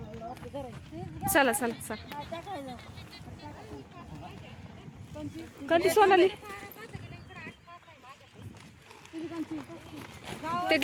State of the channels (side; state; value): both; identical; correlation 1.00